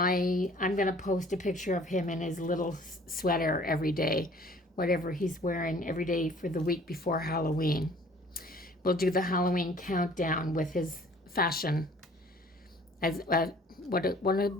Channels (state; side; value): normal; both; correlation 0.53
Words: going to post a picture of him in his little sweater every day, whatever he's wearing every day for the week before Halloween. We'll do the Halloween countdown with his fashion, as what